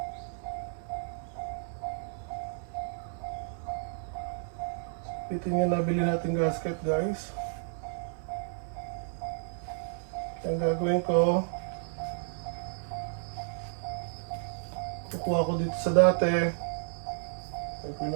Bitin yung nabili natin gasket guys. Ang gagawin ko, kukuha ko dito sa dati. Gagawin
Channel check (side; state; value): left; silent; 56 dB below the other